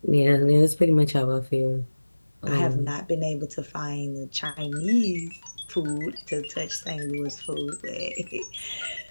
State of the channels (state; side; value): inverted; both; correlation -1.00